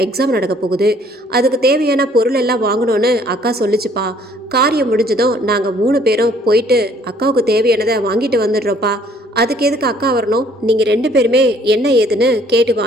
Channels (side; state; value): both; normal; correlation 0.60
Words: எக்ஸாம் நடக்க போகுது. அதுக்கு தேவையான பொருள் எல்லாம் வாங்கணும்னு அக்கா சொல்லிச்சுப்பா. காரியம் முடிஞ்சதும் நாங்கள் 3 பேரும் போயிட்டு அக்காவுக்கு தேவையானதை வாங்கிட்டு வந்துடுறோப்பா. அதுக்கு எதுக்கு அக்கா வரணும்? நீங்கள் 2 பேருமே என்ன ஏதுன்னு கேட்டு